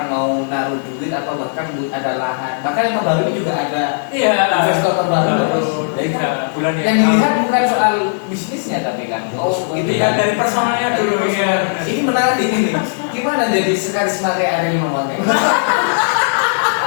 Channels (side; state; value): right; silent; 56 dB below the other